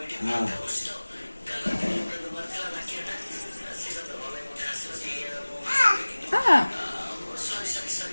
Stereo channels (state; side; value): inverted; both; correlation -1.00